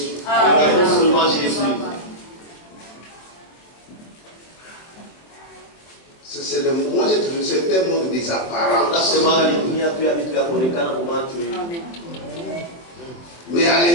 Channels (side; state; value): right; late; 24 ms